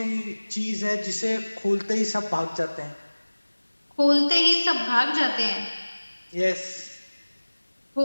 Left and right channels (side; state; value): both; inverted; correlation -1.00